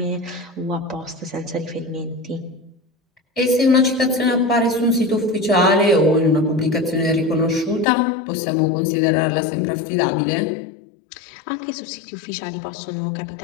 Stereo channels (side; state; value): right; drops out; at 7.9 s